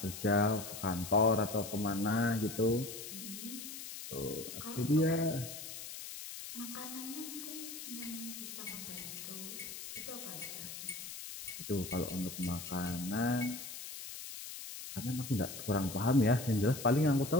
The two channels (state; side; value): noise; left; hiss, 9 dB below the sound